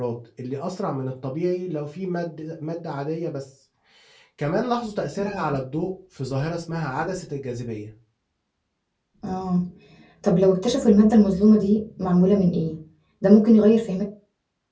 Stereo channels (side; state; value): both; identical; correlation 1.00